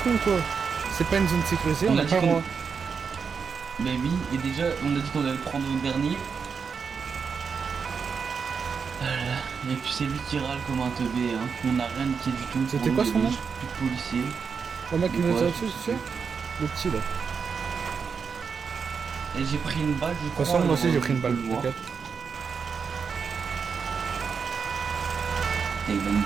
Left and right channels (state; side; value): quieter; left; 5.9 dB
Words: con, toi. C'est pas une zone sécurisée, on On a a pas dit le droit. Mais oui, et déjà, on a dit qu'on allait prendre le dernier. Et puis c'est lui qui râle comme un teubé, hein. On n'a rien niqué du tout. C'était Pour quoi nous, son nom? plus de policiers. Le mec qui nous a Ouais, tiré dessus, tu sais? Le petit, là. Et j'ai pris une balle, je De crois. toute façon, moi aussi j'ai pris une balle, on le voit. t'inquiète. Et il va